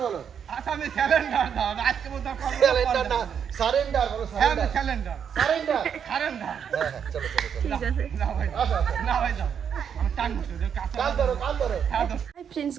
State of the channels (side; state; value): left; quieter; 7.8 dB